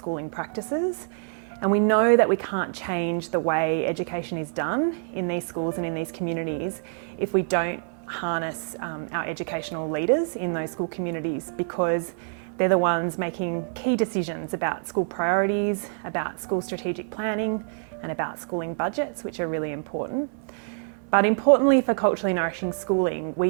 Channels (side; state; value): left; silent; digital silence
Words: practices. And we know that we can't change the way education is done in these schools and in these communities if we don't harness our educational leaders in those school communities, because they're the ones making key decisions about school priorities, about school strategic planning, and about schooling budgets, which are really important. But importantly for culturally nourishing schooling,